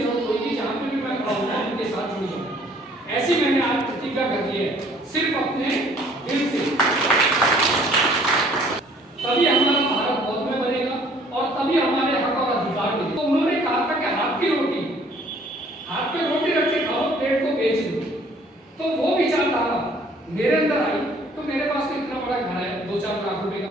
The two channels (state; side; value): normal; both; correlation 0.58